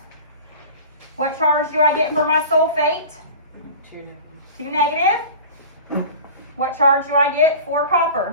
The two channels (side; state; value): both; inverted; correlation -0.37